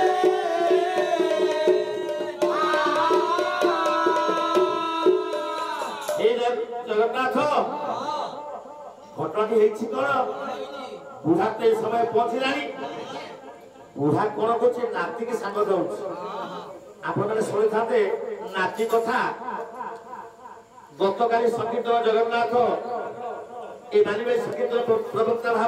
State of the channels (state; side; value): identical; both; correlation 1.00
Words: ए जगन्नाथ घटना हेछि कोन बुढ़ा ते समय पहुंचलानी बुढ़ा कोन कोछि नाती के संग दउछ आपण माने सुनि थाते नाची कथा गतकाली संकीर्तन जगन्नाथ ए मानिबे संकीर्तन प्रवक्ता